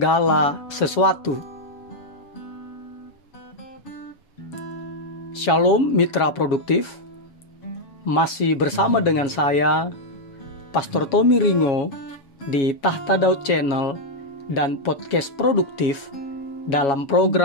sesuatu. Shalom mitra produktif. Masih bersama dengan saya, Pastor Tommy Ringo, di Tahta Daud Channel dan Podcast Produktif dalam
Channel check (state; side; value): late; right; 7.2 ms